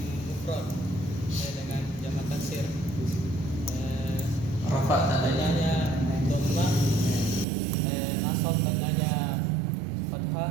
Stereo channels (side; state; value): left; drops out; at 7.5 s